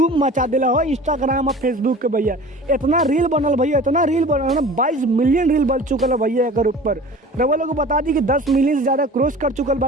मचा दिला हो इंस्टाग्राम और फेसबुक के भैया। इतना रील बनल भैया, इतना रील बनल ना 22 मिलियन रील बन चुकल है भैया। एकर ऊपर रवा लोग को बता दी कि 10 मिलियन से ज़्यादा क्रॉस कर चुकल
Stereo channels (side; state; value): both; normal; correlation 0.41